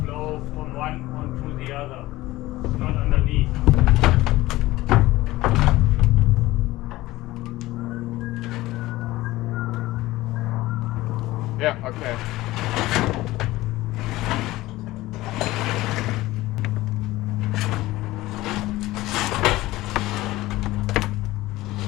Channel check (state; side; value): quieter; right; 17.9 dB